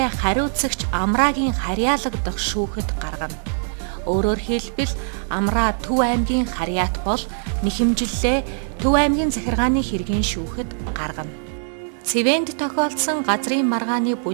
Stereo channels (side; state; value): left; silent; 64 dB below the other